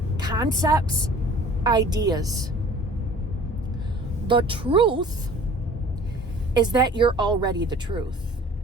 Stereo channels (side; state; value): both; normal; correlation 0.48